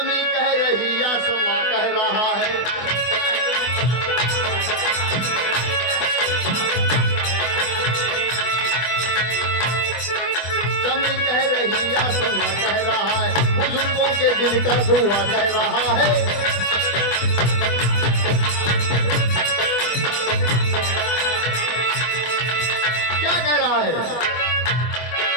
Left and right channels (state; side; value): late; right; 24 ms